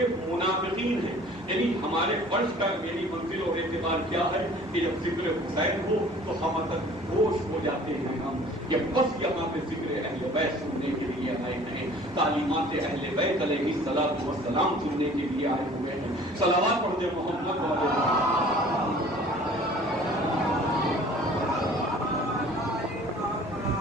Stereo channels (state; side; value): normal; both; correlation 0.49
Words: منافقین ہیں. یعنی ہمارے فرض کا یعنی منزل اور اعتبار کیا ہے کہ جب ذکر حسین ہو تو ہم ہوش ہو جاتے ہیں ہم کہ بس یہاں پہ ذکر اہل بیت سننے کے لیے آئے ہیں، تعلیمات اہل بیت علیہ الصلوۃ والسلام سننے کے لیے آئے ہوئے ہیں. صلوات پڑھ دے محمد